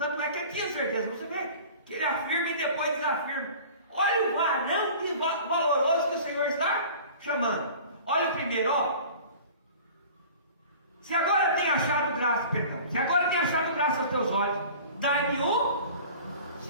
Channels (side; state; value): both; inverted; correlation -0.42